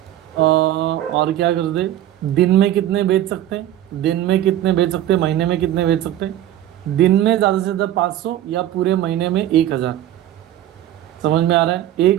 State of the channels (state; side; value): quieter; left; 12.7 dB